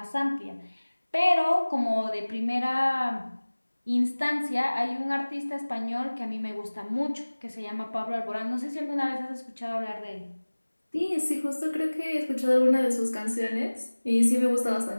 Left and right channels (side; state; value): both; inverted; correlation -1.00